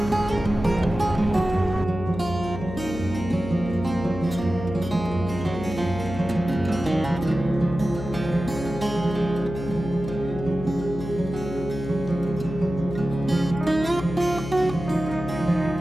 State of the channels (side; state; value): left; noise; hum, 8 dB below the sound